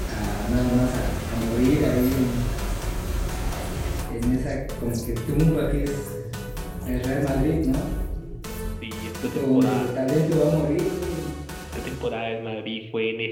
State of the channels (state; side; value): identical; both; correlation 1.00